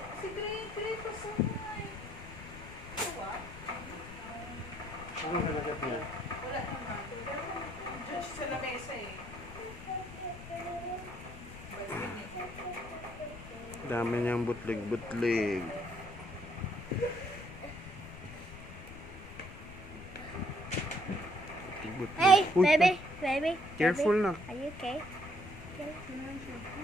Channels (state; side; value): noise; left; rumble, 13 dB below the sound